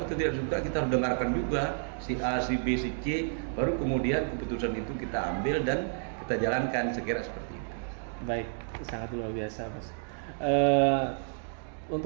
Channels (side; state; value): left; silent; digital silence